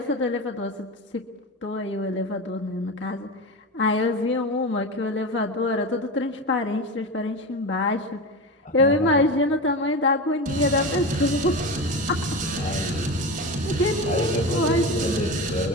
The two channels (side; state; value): both; normal; correlation 0.24